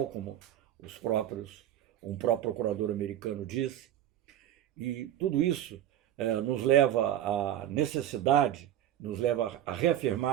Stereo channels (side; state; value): left; quieter; 11.7 dB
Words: como um próprio procurador americano disse. E tudo isso nos leva a